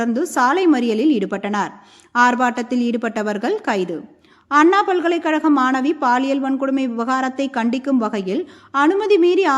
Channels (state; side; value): identical; both; correlation 1.00